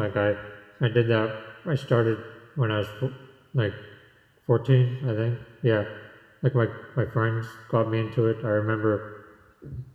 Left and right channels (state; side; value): identical; both; correlation 1.00